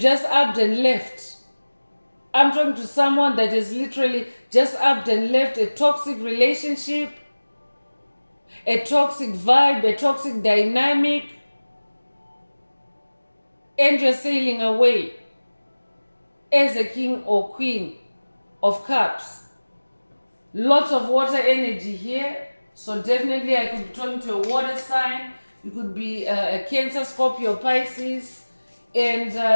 upped and left. I'm talking to someone that has literally just upped and left a toxic relationship, a toxic vibe, a toxic dynamic, and you're sailing away as a king or queen of cups. Lots of water energy here. So definitely I could be talking to a water sign. You could be a Cancer, Scorpio, Pisces. And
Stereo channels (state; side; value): inverted; both; correlation -1.00